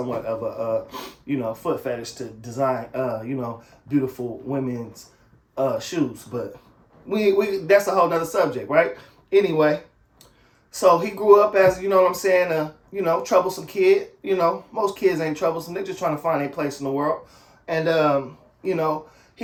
of a, you know, foot fetish to design, you know, beautiful women's shoes. But we that's a whole nother subject, right? Anyway, so he grew up as, you know what I'm saying, you know, troublesome kid. You know, most kids ain't troublesome. They're just trying to find a place in the world. And, you know,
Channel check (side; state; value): both; identical; correlation 1.00